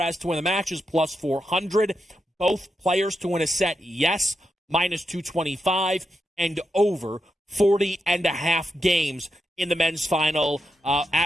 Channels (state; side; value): normal; both; correlation 0.86